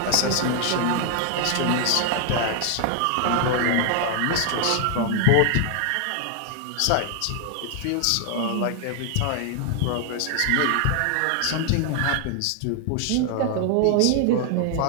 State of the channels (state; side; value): different; both; correlation 0.00